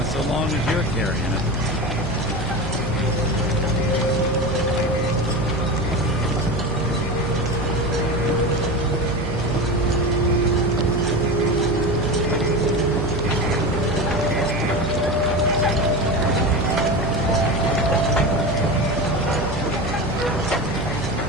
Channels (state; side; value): noise; right; hum, 7 dB below the sound